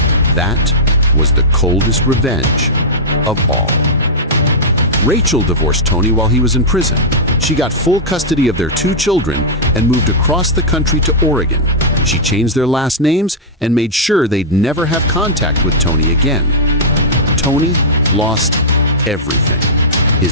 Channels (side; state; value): both; normal; correlation -0.10